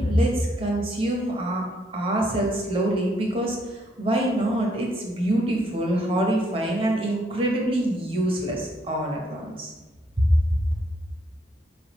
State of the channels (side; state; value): both; normal; correlation 0.72